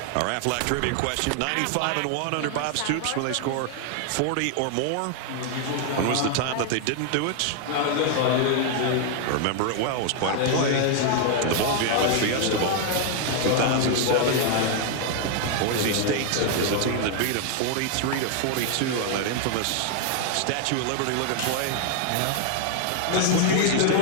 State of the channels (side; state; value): both; different; correlation 0.00